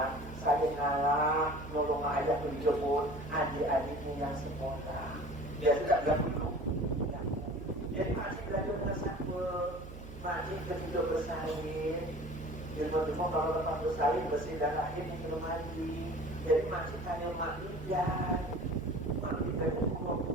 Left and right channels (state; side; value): noise; right; hum, 13 dB below the sound